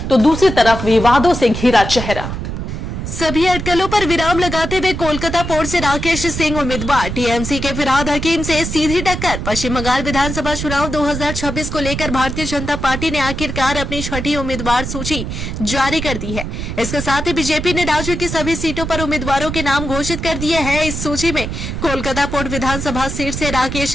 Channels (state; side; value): noise; right; rumble, 5 dB below the sound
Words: तो दूसरी तरफ विवादों से घिरा चेहरा। सभी अटकलों पर विराम लगाते हुए कोलकाता पोर्ट से राकेश सिंह उम्मीदवार, टीएमसी के फिरहाद हकीम से सीधी टक्कर। पश्चिम बंगाल विधानसभा चुनाव 2026 को लेकर भारतीय जनता पार्टी ने आखिरकार अपनी छठी उम्मीदवार सूची जारी कर दी है। इसके साथ ही बीजेपी ने राज्य की सभी सीटों पर उम्मीदवारों के नाम घोषित कर दिए हैं। इस सूची में कोलकाता पोर्ट विधानसभा सीट से